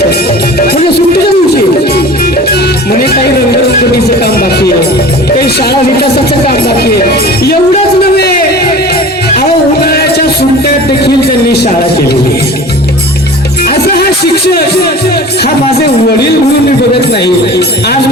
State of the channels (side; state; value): both; normal; correlation 0.39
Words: म्हणजे सुट्टीच्या दिवशी म्हणे काही रंगरंगोटीचं काम बाकी आहे काही शाळा विकासाचं काम बाकी आहे एवढंच नव्हे अहो उन्हाळ्याच्या सुट्ट्यात देखील त्यांनी शाळा केलेली असं हा शिक्षक हा माझे वडील म्हणून मी बघत नाही आज